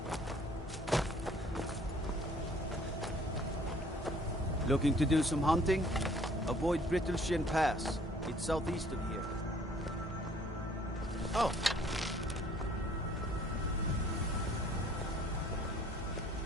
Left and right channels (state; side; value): normal; both; correlation 0.58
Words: Looking to do some hunting? Avoid Brittleshin Pass. It's southeast of here. Oh.